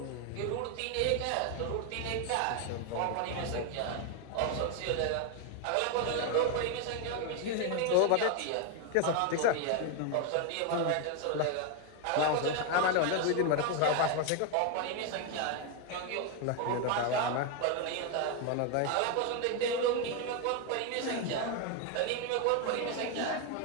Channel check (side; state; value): both; different; correlation 0.01